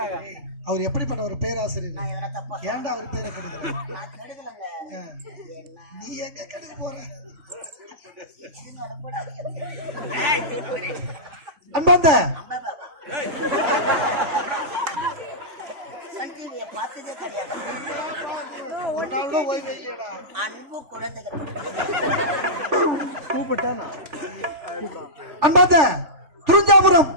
அவர் எப்படிப்பட்ட ஒரு பேராசிரியர்? ஏன்டா அவர் பேரை கெடுக்கிற? நீ எங்க கெடுக்க போற? அன்பாந்த பார்த்ததே கிடையாது. ஒரு நாள் கூட ஓய்வு இல்லையடா. அன்பு குழந்தைகள் கூப்பிட்டானா? அன்பாந்த துரிஞ்சாபுரம்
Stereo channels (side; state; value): left; late; 3.4 ms